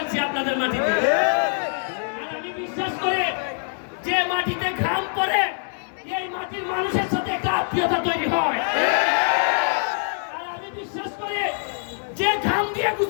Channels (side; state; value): right; silent; 63 dB below the other